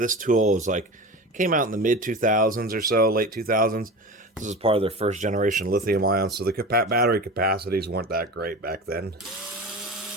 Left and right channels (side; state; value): both; normal; correlation 0.31